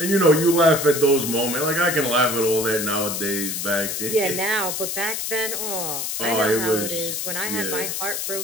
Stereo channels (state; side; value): noise; left; hiss, 3 dB below the sound